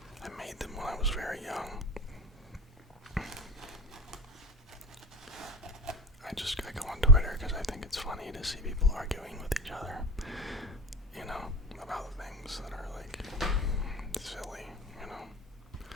I made them when I was very young. I go on Twitter because I think it's funny to see people arguing with each other, about things that are like silly,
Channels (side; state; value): both; normal; correlation 0.40